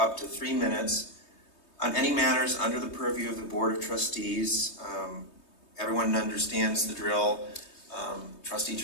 to 3 minutes on any matters under the purview of the Board of Trustees. Everyone understands the drill. Trustee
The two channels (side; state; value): right; late; 3.2 ms